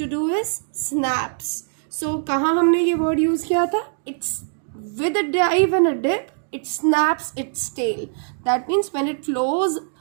do is snaps. So कहाँ हमने ये word use किया था? It's with a dive and a dip. It snaps its tail. That means when it flows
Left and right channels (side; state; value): left; silent; digital silence